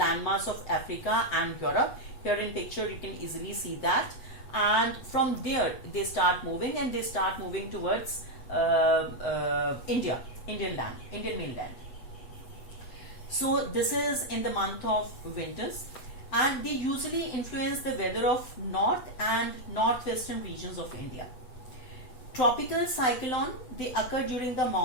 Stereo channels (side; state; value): right; late; 7.9 ms